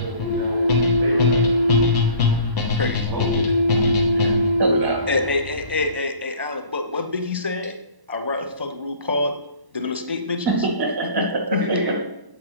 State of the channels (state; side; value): late; left; 1.0 ms